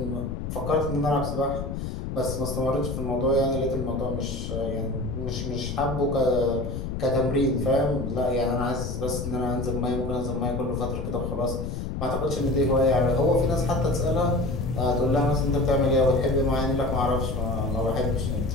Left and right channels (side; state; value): left; noise; rumble, 5 dB below the sound